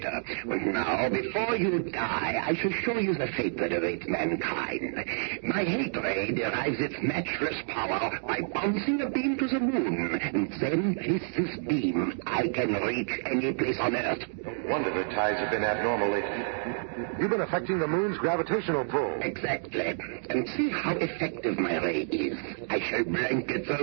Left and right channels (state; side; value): silent; left; digital silence